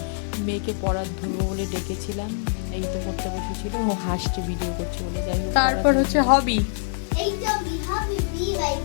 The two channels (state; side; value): silent; right; digital silence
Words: মেয়েকে পড়ার ধরবো বলে ডেকেছিলাম, এই তো পড়তে বসেছিল, ও হাসছে ভিডিও করছে বলে। যাই হোক, তারপর হবি।